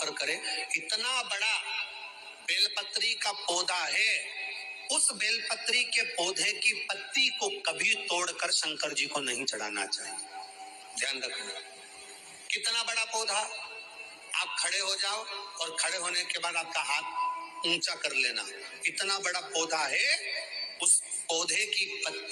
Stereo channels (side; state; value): both; identical; correlation 1.00